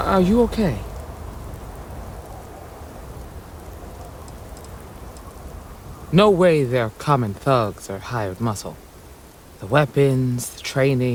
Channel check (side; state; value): both; identical; correlation 1.00